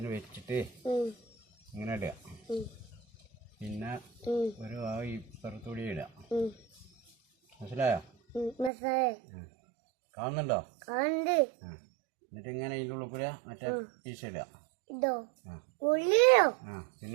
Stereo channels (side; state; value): left; drops out; at 8.7 s